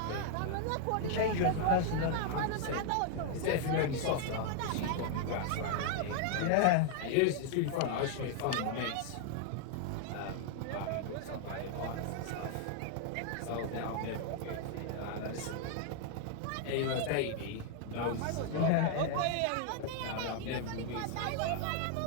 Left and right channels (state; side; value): different; both; correlation 0.00